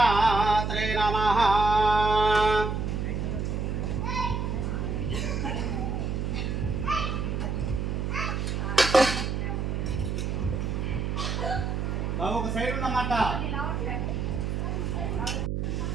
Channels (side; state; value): right; noise; hum, 1 dB below the sound